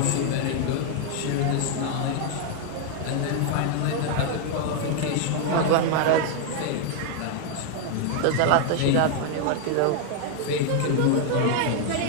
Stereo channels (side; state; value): both; different; correlation 0.00